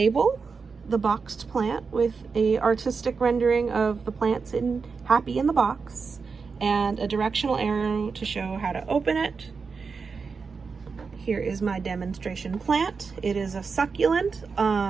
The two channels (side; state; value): left; quieter; 5.1 dB